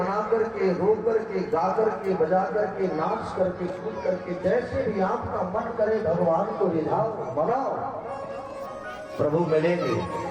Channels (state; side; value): identical; both; correlation 1.00